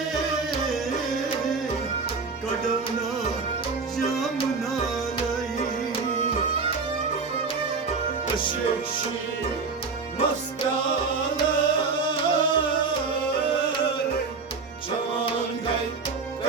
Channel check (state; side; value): quieter; left; 4.6 dB